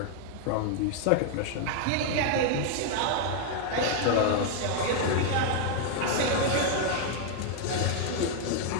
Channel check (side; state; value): both; different; correlation 0.00